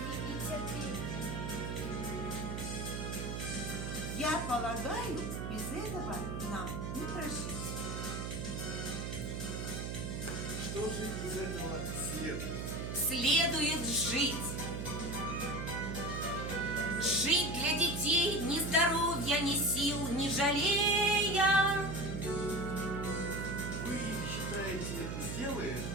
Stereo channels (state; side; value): noise; right; hum, 4 dB below the sound